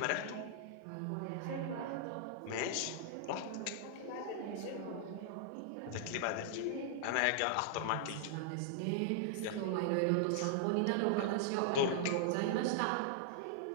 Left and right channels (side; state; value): both; different; correlation -0.01